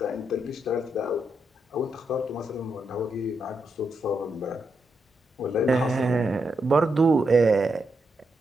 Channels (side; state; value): both; normal; correlation 0.83